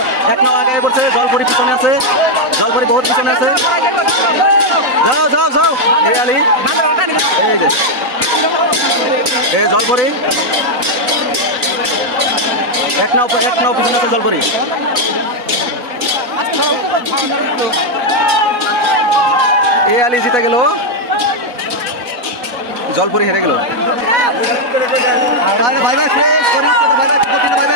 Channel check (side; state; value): left; late; 4.0 ms